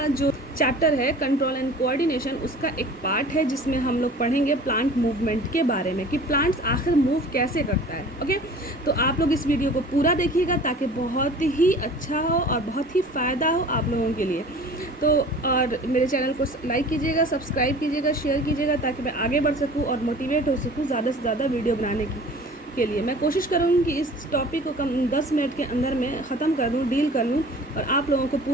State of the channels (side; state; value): both; normal; correlation 0.44